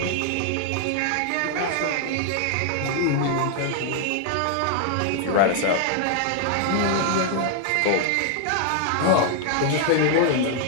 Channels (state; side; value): different; both; correlation 0.00